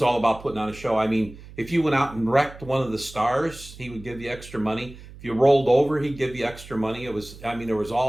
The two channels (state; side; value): noise; right; hum, 17 dB below the sound